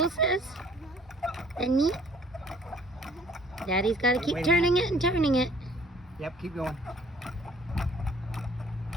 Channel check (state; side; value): normal; both; correlation 0.57